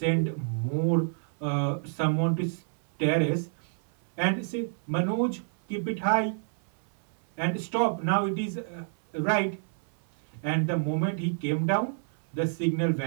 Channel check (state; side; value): silent; left; 59 dB below the other